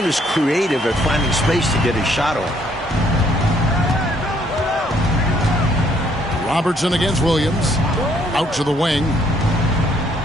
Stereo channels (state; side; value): normal; both; correlation 0.67